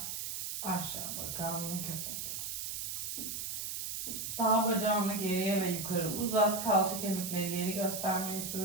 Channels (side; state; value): right; noise; hiss, 4 dB below the sound